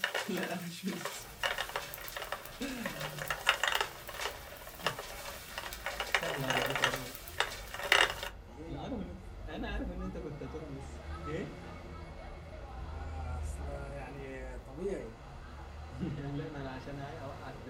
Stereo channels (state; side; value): identical; both; correlation 1.00